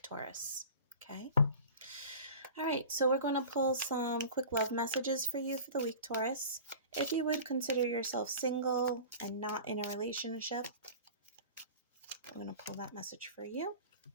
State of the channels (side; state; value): both; inverted; correlation -0.37